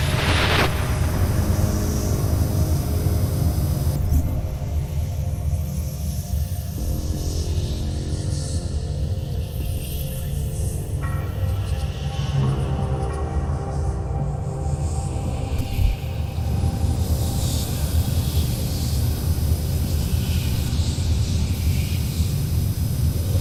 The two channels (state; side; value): identical; both; correlation 1.00